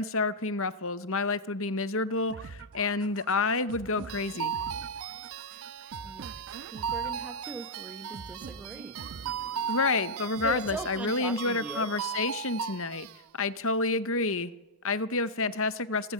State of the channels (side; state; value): both; normal; correlation -0.06